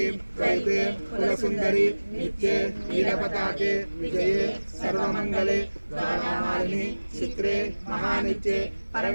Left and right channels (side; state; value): both; inverted; correlation -1.00